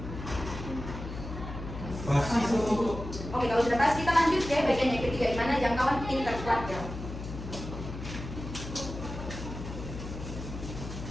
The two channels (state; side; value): noise; left; hum, 9 dB below the sound